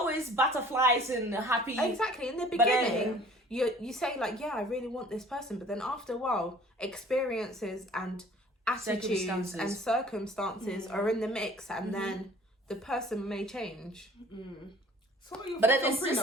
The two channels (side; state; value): both; normal; correlation 0.51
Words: butterflies and happy. Exactly. In the But then- beginning, you say like, yeah, I really want this person, but then after a while, experiences and attitudes Circumstances. and circumstances are in the mix, and then the person may change. So what are your But then thoughts it's on just